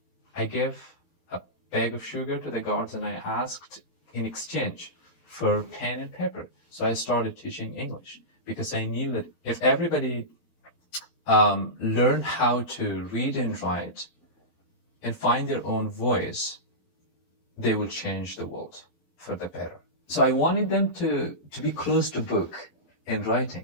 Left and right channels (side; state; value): right; late; 12 ms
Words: I gave a bag of sugar to the guards, and I asked in exchange for pen and paper. So I started teaching English because I knew that if everybody learned how to read and write and find their own voice, they will change the world for the better. So I wanted them to be close to book and